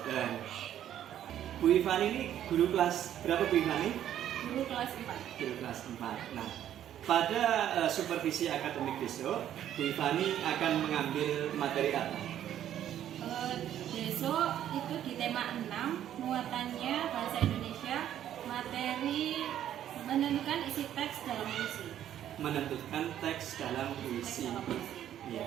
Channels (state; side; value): quieter; left; 11.0 dB